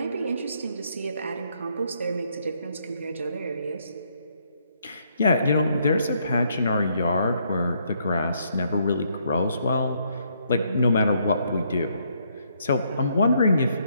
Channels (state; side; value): inverted; both; correlation -0.72